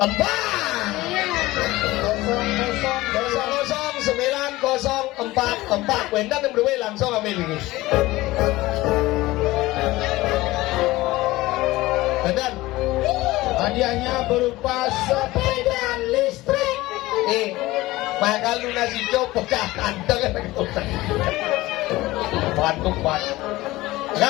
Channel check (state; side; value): quieter; right; 18.6 dB